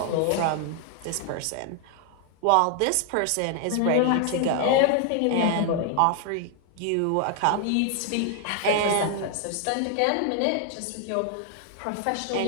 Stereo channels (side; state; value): both; different; correlation 0.00